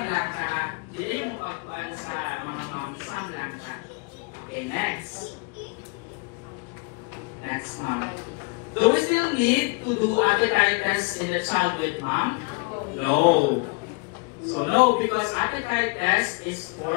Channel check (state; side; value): quieter; right; 30.8 dB